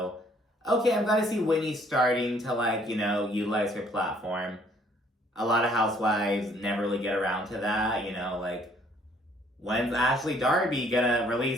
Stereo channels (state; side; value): normal; both; correlation 0.62